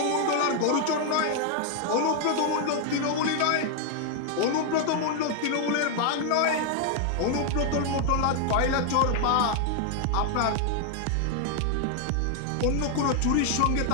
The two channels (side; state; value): both; different; correlation 0.00